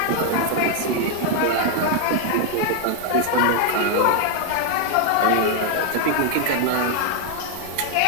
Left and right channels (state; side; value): different; both; correlation 0.00